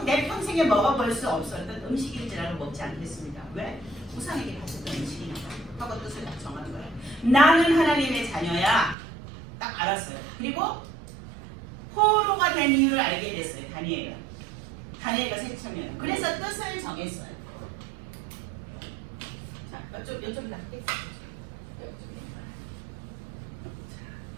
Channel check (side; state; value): left; drops out; at 9.0 s